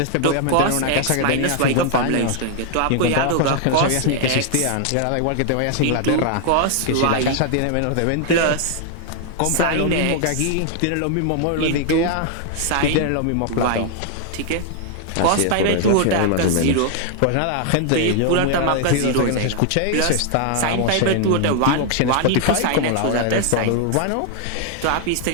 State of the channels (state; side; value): different; both; correlation 0.00